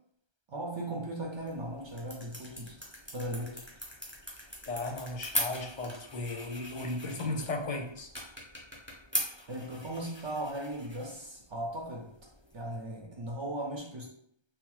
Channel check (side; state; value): left; late; 1.3 ms